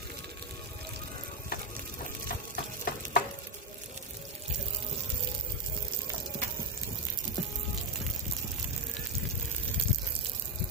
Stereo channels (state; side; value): normal; both; correlation 0.05